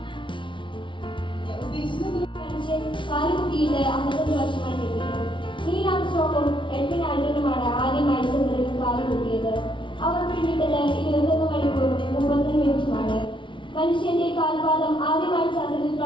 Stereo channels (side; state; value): right; late; 0.24 ms